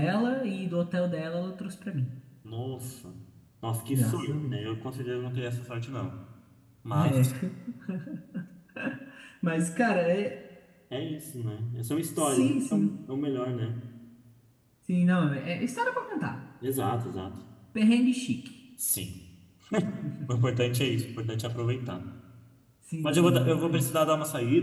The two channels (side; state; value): both; identical; correlation 1.00